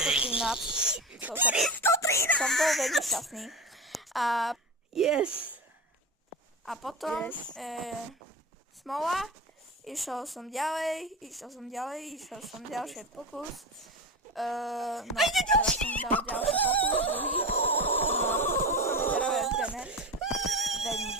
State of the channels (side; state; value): both; normal; correlation 0.24